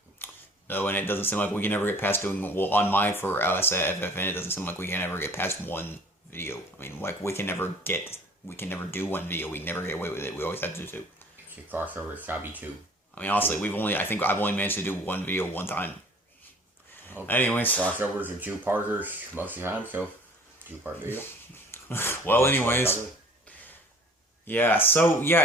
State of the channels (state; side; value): normal; both; correlation 0.50